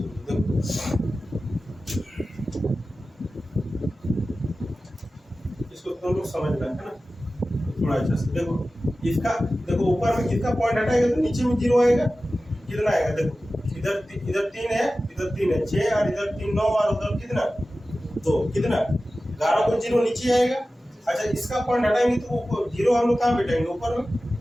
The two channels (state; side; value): normal; both; correlation 0.95